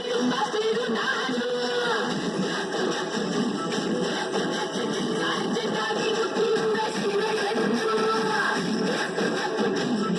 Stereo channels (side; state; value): both; identical; correlation 1.00